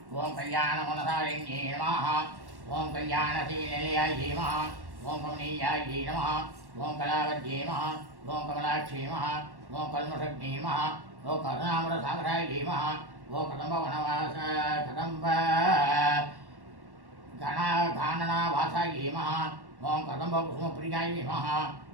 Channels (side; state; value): left; late; 1.1 ms